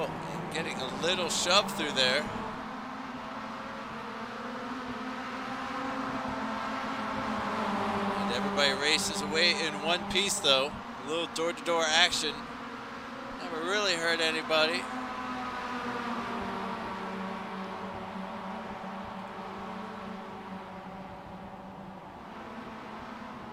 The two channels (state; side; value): identical; both; correlation 1.00